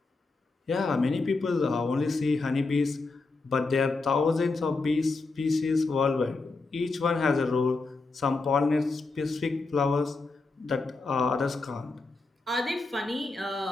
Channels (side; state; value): right; quieter; 3.7 dB